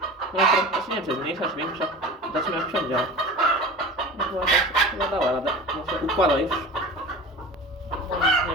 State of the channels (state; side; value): normal; both; correlation 0.35